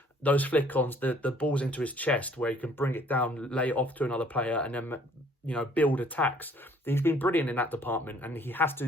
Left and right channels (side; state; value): both; normal; correlation 0.59